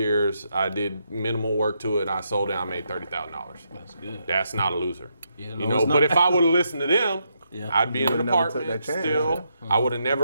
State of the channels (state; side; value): inverted; both; correlation -0.79